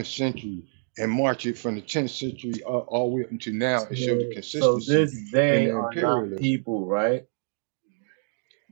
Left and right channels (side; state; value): left; silent; digital silence